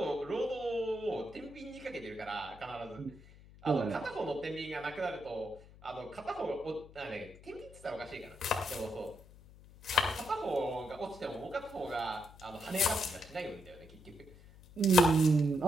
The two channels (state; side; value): noise; left; hum, 21 dB below the sound